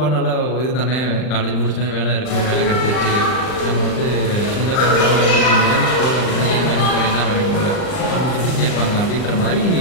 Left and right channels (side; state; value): right; late; 39 ms